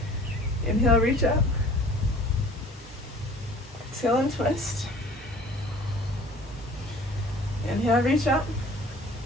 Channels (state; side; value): normal; both; correlation 0.49